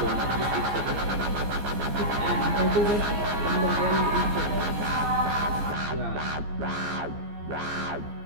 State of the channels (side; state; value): left; late; 14 ms